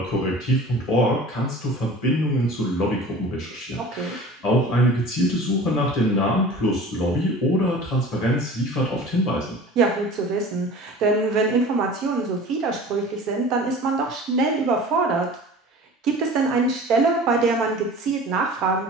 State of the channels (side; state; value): both; normal; correlation 0.40